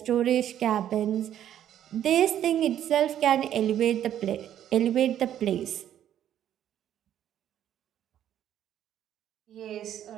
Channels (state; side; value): quieter; left; 10.9 dB